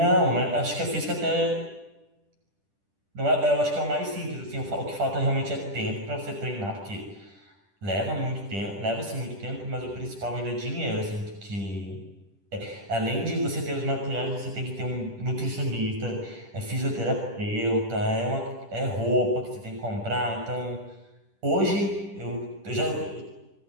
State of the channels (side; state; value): left; late; 10 ms